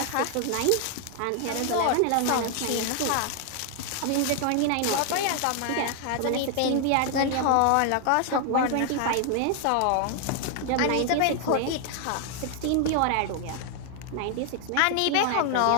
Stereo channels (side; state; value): both; different; correlation 0.00